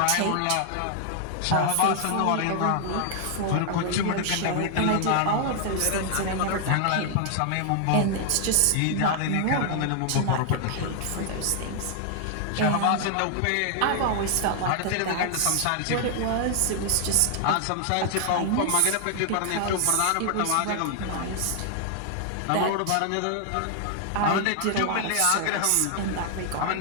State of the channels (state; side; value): different; both; correlation 0.00